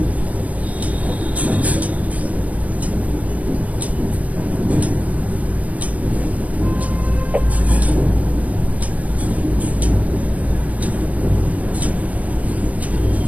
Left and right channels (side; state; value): left; late; 0.071 ms